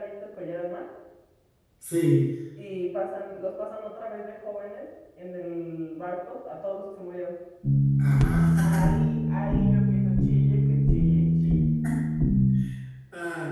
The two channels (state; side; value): identical; both; correlation 1.00